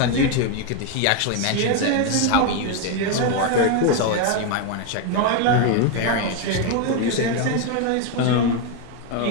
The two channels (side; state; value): both; different; correlation 0.01